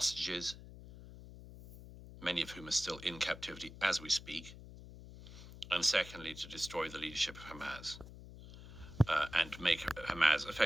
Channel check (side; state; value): left; noise; hum, 15 dB below the sound